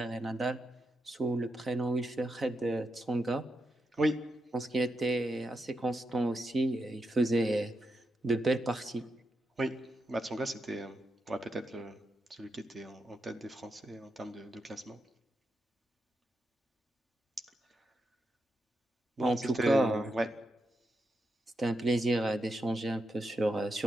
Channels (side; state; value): both; normal; correlation 0.84